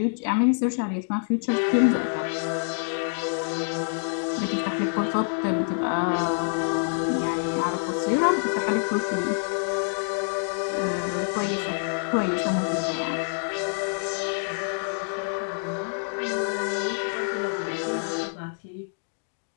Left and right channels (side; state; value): right; silent; digital silence